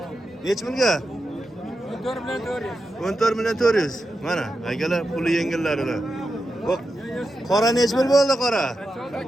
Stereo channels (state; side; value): normal; both; correlation 0.89